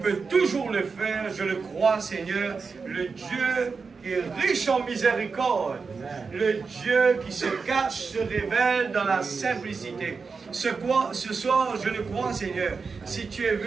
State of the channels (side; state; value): left; quieter; 4.9 dB